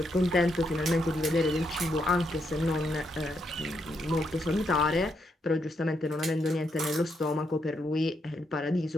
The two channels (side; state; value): both; normal; correlation 0.79